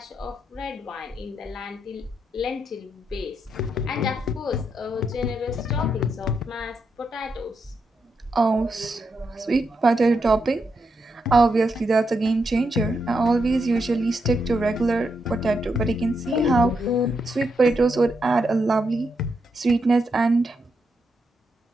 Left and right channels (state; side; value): normal; both; correlation 0.82